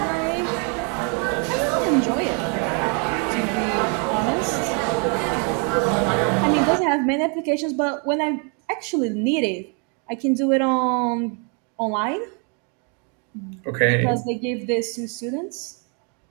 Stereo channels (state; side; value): quieter; left; 37.4 dB